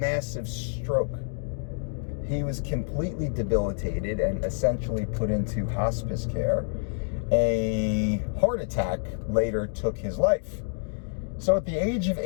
stroke. He was completely debilitated and essentially put into hospice care. A heart attack later took his life. So at the age of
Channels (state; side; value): silent; right; digital silence